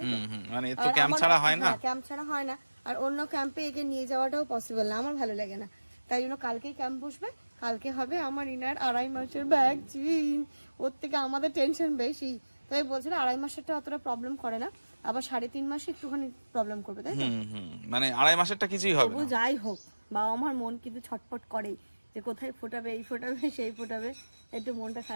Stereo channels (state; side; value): inverted; both; correlation -1.00